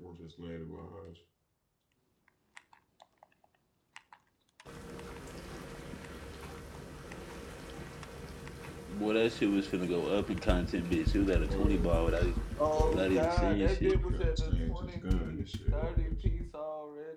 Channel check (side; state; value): both; identical; correlation 1.00